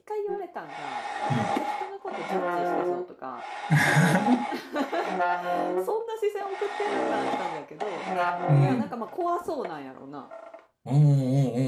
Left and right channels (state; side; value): identical; both; correlation 1.00